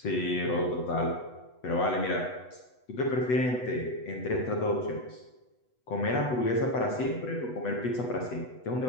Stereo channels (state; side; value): late; right; 8.1 ms